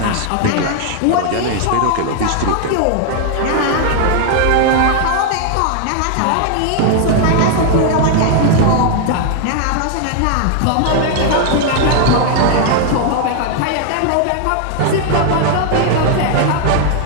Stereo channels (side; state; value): both; different; correlation 0.00